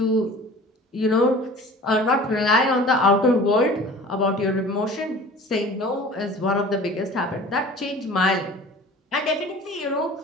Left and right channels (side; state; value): both; normal; correlation 0.43